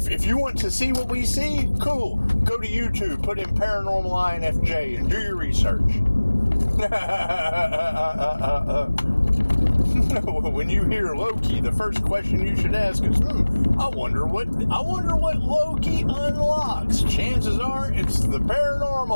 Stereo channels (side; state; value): both; inverted; correlation -1.00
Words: If you want to see what we see, cool. Go to YouTube, put in paranormal INFJ, and do your research. When you hear Loki, the first question you should ask is, I wonder what Loki unlocks. Chances are it's the